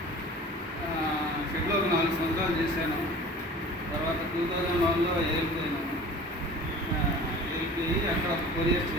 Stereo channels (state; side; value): normal; both; correlation 0.43